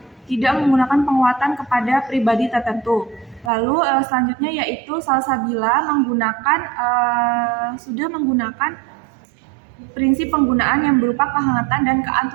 tidak menggunakan penguatan kepada pribadi tertentu. Lalu selanjutnya yaitu Salsabila sudah menggunakan prinsip penggunaan yang berupa kehangatan dan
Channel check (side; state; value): left; drops out; at 3.5 s